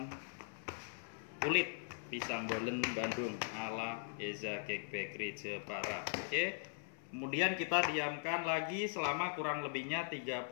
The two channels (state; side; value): silent; right; 51 dB below the other